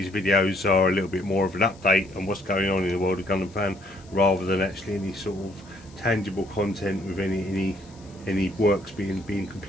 videos are a little bit more of an update on what's going on in the world of GundamFan, rather than actually any sort of tangible content with any works being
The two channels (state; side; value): noise; left; hiss, 27 dB below the sound